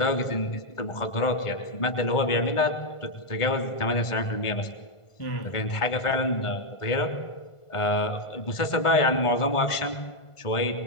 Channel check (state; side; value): late; right; 1.4 ms